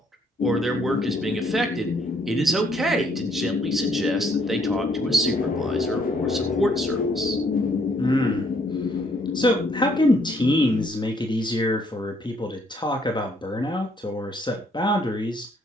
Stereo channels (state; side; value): normal; both; correlation 0.67